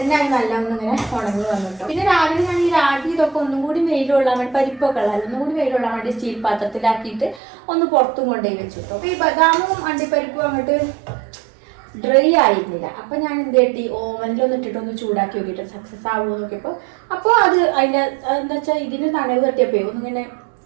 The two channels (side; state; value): left; drops out; at 7.4 s